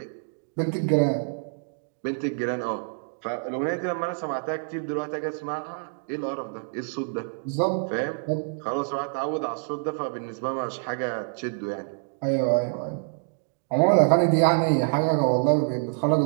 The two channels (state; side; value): silent; left; digital silence